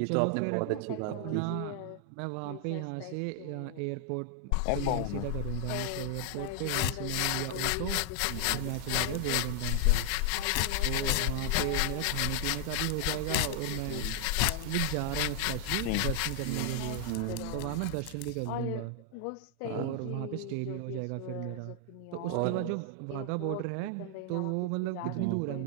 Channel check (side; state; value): both; different; correlation 0.00